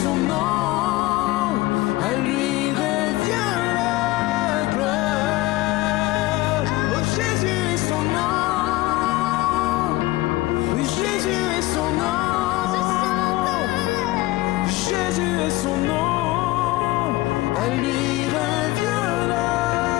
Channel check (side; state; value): right; quieter; 19.1 dB